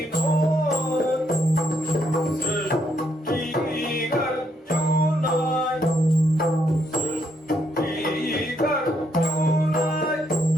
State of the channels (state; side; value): normal; both; correlation 0.74